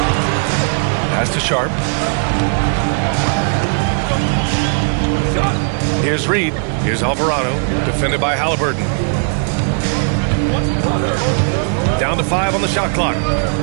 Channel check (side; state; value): left; silent; 56 dB below the other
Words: Pass to Sharp. Here's Reed. Here's Alvarado. Defended by Halliburton. Down to 5 on the shot clock.